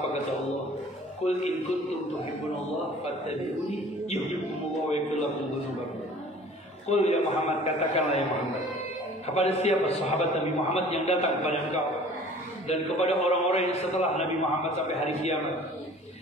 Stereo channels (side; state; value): both; normal; correlation 0.48